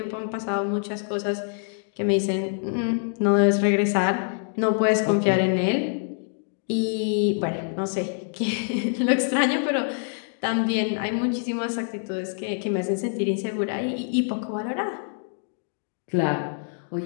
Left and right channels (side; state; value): right; silent; 61 dB below the other